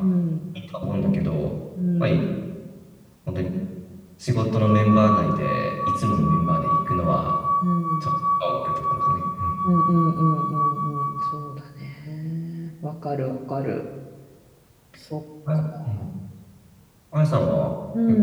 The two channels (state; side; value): identical; both; correlation 1.00